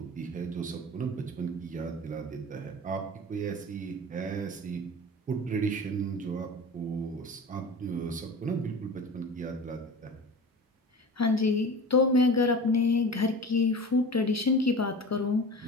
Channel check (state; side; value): normal; both; correlation 0.35